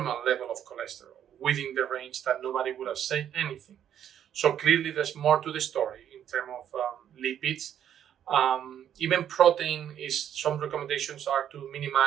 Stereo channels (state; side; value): quieter; left; 9.9 dB